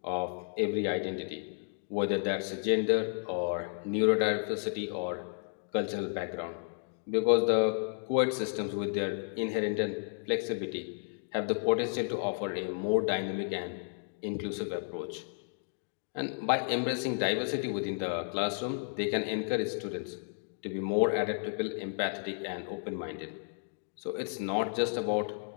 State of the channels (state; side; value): silent; right; digital silence